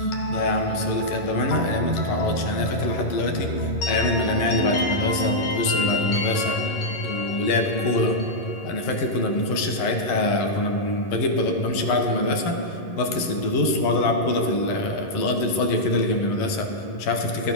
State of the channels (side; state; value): right; late; 11 ms